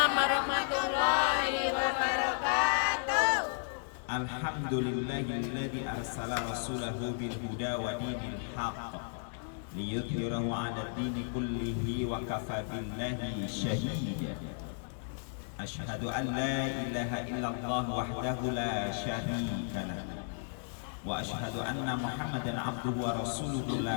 warahmatullahi wabarakatuh. Alhamdulillahilladzi arsala rasulahu bil huda wa dinil haqq liyudhhirahu 'ala dini kullihi wa kafa billahi shahida. Asyhadu an la ilaha illallah wahdahu la syarika lah wa asyhadu anna Muhammadan abduhu wa rasuluhu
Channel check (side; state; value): right; silent; digital silence